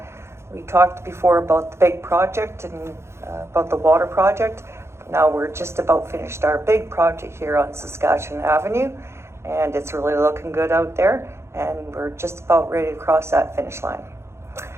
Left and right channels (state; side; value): late; left; 0.13 ms